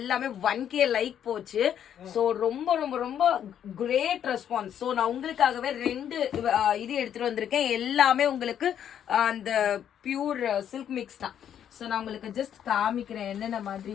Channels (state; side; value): quieter; right; 9.5 dB